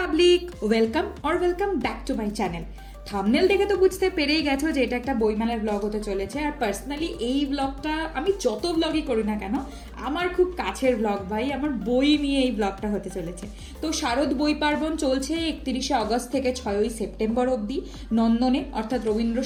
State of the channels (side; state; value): both; identical; correlation 1.00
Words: welcome back to my channel. Thumbnail দেখে তো বুঝতে পেরেই গেছো যে এটা একটা বইমেলার ব্লগ হতে চলেছে। আর পার্সোনালি এই ব্লগটা আমি যত ব্লগই করি না কেন, আমার খুব কাছের ব্লগ ভাই, আমার বই নিয়ে এই ব্লগটা হতে চলেছে। তো শারদ বই পার্বণ চলছে 31শে অগস্ট থেকে 6ই সেপ্টেম্বর অবধি নন্দনে, অর্থাৎ রবীন্দ্র